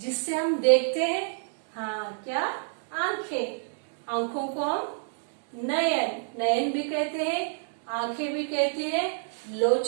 हम देखते हैं। हाँ, क्या? आंखें। आंखों को हम नयन, नयन भी कहते हैं, आंखें भी कहते हैं,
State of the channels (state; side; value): silent; left; digital silence